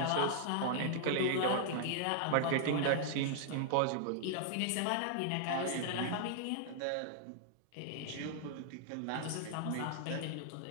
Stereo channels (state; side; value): different; both; correlation -0.01